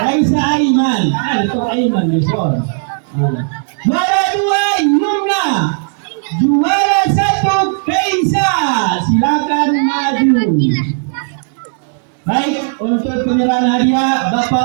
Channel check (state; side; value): silent; left; 67 dB below the other